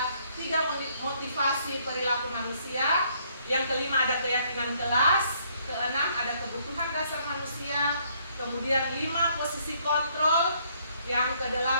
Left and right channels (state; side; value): inverted; both; correlation -0.67